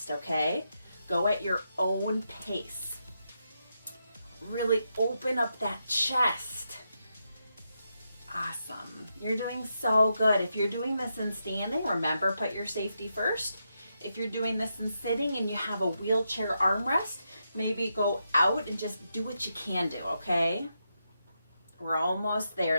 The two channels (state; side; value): inverted; both; correlation -0.84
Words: okay? Go at your own pace. Really open up that chest. Awesome. You're doing so good. If you're doing this in standing, remember, put your safety first. If you're doing this in sitting and you have a wheelchair armrest, maybe go out and just do what you can do, okay? We're almost